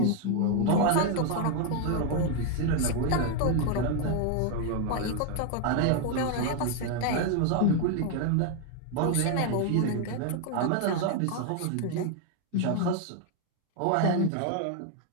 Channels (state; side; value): different; both; correlation 0.01